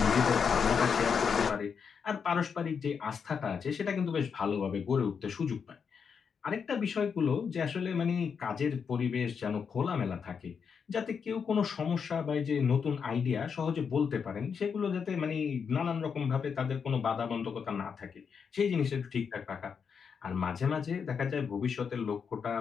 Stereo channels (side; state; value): right; quieter; 6.4 dB